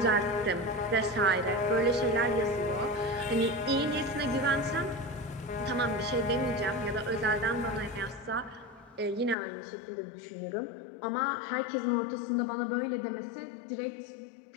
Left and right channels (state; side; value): drops out; right; at 9.3 s